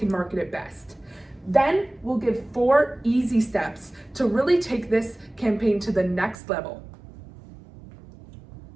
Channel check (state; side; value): drops out; left; at 6.4 s